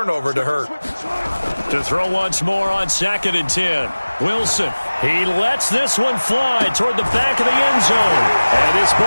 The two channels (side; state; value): both; inverted; correlation -1.00